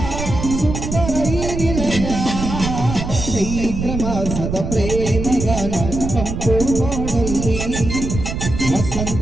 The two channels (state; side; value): noise; right; rumble, 5 dB below the sound